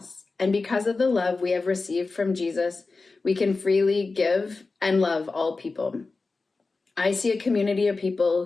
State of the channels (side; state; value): right; quieter; 3.9 dB